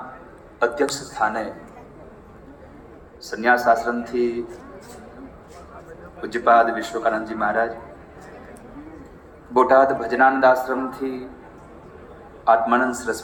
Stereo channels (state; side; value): identical; both; correlation 1.00